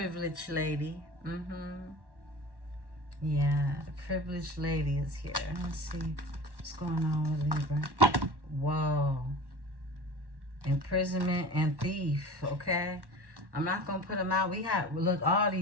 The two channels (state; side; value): late; left; 1.1 ms